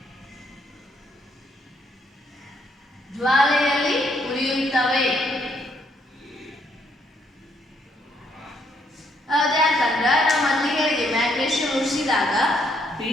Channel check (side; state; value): both; normal; correlation 0.72